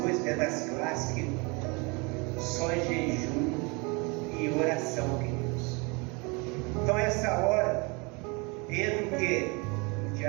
dentro das classes que só é jejum e oração, queridos. Então essa hora, entra o quê? O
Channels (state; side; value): quieter; left; 29.1 dB